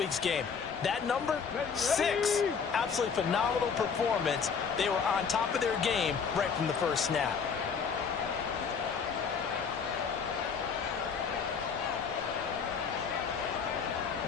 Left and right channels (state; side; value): quieter; right; 6.1 dB